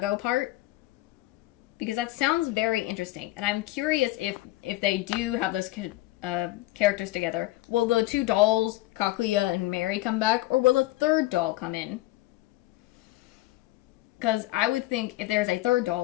part. Because that sounds very interesting. And I'm curious if they do have those characters together. Will the two dolls, Kaguya and Mary, come back? Or will a third doll come in? Because I would think if there's a third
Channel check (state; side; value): quieter; right; 17.5 dB